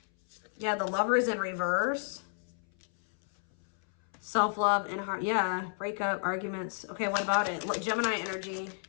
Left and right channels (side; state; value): right; silent; 57 dB below the other